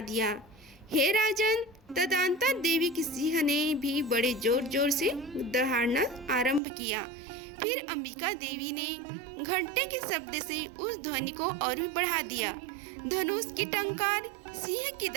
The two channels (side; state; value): left; drops out; at 6.6 s